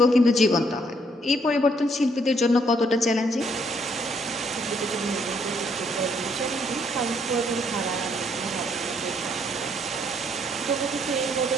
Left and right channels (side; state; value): both; normal; correlation 0.69